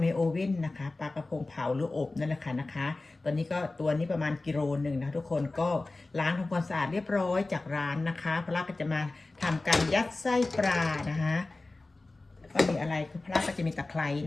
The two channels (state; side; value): quieter; right; 3.2 dB